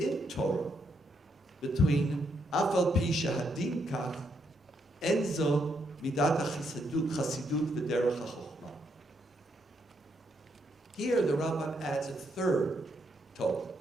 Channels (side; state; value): both; normal; correlation 0.77